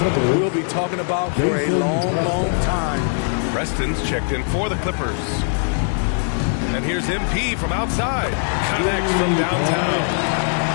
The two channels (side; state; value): right; silent; 65 dB below the other